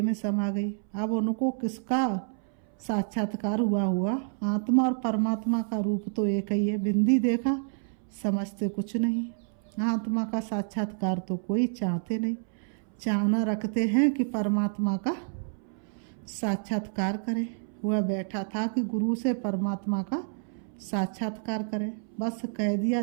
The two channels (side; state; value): left; silent; 59 dB below the other